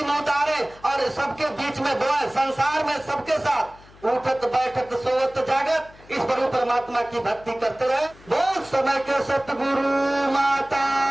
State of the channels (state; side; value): noise; left; hum, 24 dB below the sound